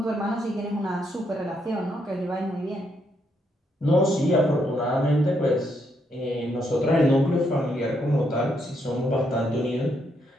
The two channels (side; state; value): both; normal; correlation 0.76